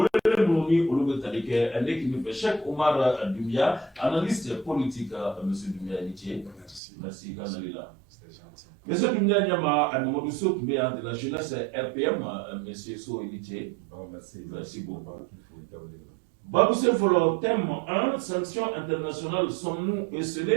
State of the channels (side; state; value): left; drops out; at 6.8 s